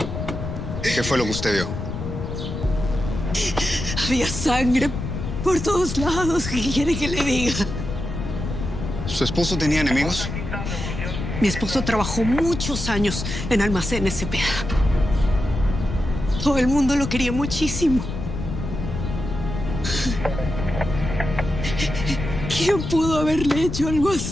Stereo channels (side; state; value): left; noise; rumble, 5 dB below the sound